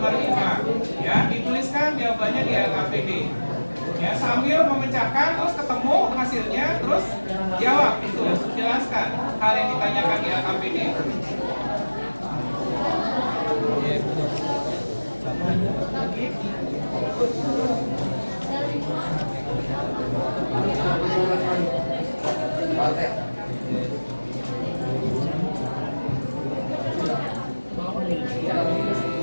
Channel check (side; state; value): both; inverted; correlation -1.00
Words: 5? Ya, dituliskan jawabannya di LKPD. Ya, sambil memecahkan, terus ketemu hasilnya, terus jawab itu, jelaskan hal yang ditanyakan di LKPD.